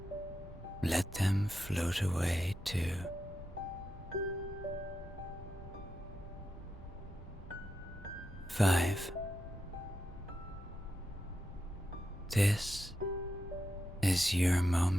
let them float away too. Five. This is your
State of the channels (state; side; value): normal; both; correlation 0.87